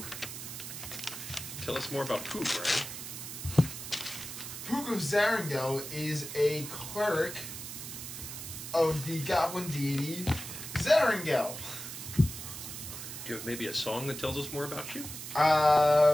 Tell us more about Poog, Ryan. Poog of Zarangel is a cleric of the goblin deity Zarangel. Do you have maybe a song that tells us more about you?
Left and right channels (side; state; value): right; noise; hiss, 9 dB below the sound